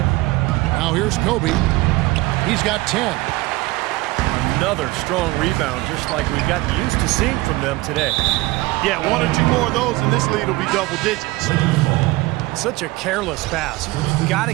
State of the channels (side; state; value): left; quieter; 20.7 dB